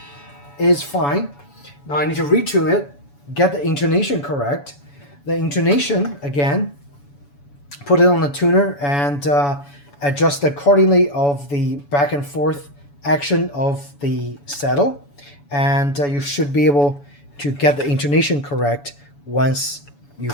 is fine. Now I need to retune it, get the intonation correct. The intonation, again, put it on the tuner and adjust accordingly of the back and forth action of the saddle, and you should be able to get the intonation correct once you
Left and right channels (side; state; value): right; late; 7.0 ms